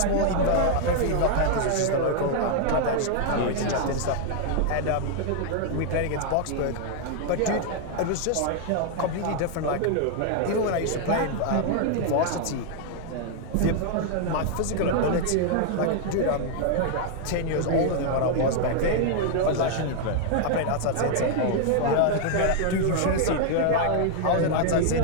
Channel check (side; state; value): both; different; correlation 0.00